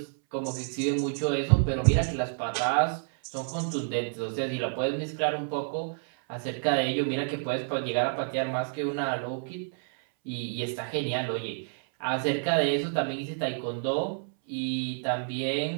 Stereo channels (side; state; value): left; silent; 59 dB below the other